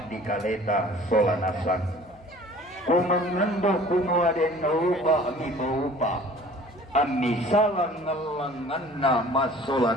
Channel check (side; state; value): left; noise; hum, 27 dB below the sound